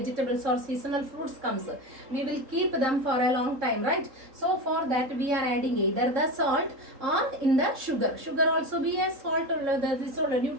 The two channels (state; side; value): late; left; 3.8 ms